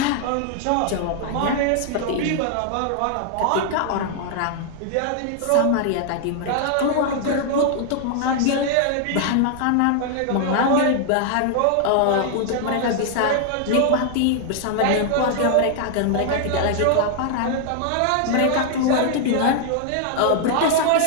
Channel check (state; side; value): different; both; correlation 0.00